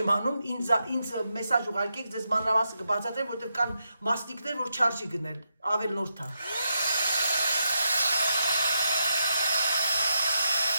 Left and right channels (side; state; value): both; inverted; correlation -0.84